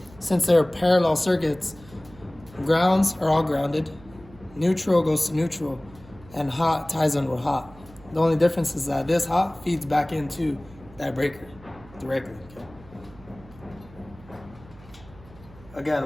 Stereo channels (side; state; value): right; noise; hum, 22 dB below the sound